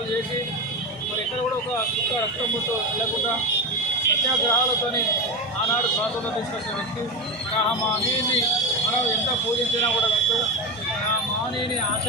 చేసి మరి ఎక్కడ కూడా ఒక చుక్క రక్తం ముట్టు వెళ్ళకుండా సత్యాగ్రహాలతోని ఆనాడు స్వాతంత్రం తీసుకొచ్చిన వ్యక్తి. ఆ మహనీయుని మనం ఎంత పూజించినా కూడా ఆ మహనీయుని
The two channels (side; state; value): both; normal; correlation 0.18